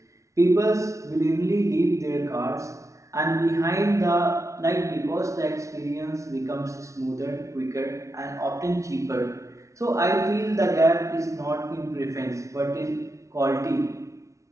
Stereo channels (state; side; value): late; left; 0.15 ms